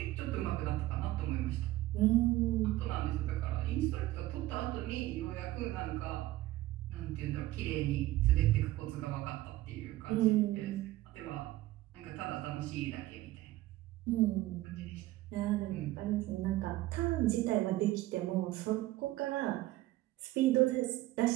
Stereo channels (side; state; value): left; quieter; 16.7 dB